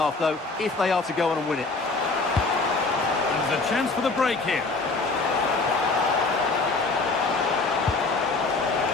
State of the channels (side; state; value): right; quieter; 3.7 dB